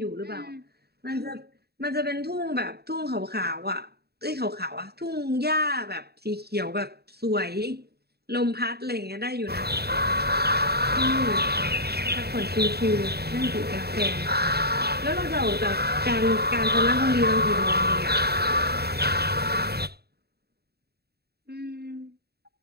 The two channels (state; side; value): late; left; 0.47 ms